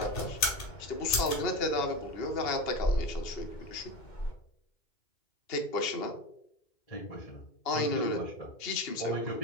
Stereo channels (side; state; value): right; late; 2.8 ms